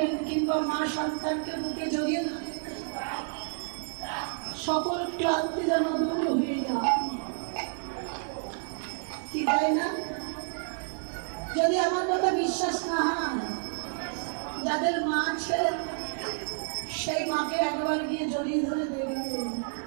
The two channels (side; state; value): left; silent; 58 dB below the other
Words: কিংবা মা সন্তানকে বুকে জড়িয়ে ধরেন, সকল ক্লান্তি যেন দূর হয়ে যায়, কি তাই না? যদি আমার কথা বিশ্বাস না হয়, যাদের মা আছে সেই মাকে একবার গিয়ে জড়িয়ে ধরে দেখবে